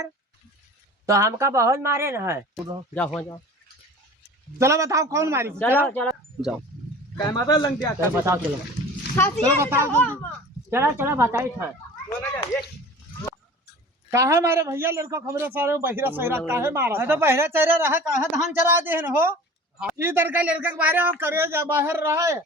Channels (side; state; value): both; normal; correlation 0.41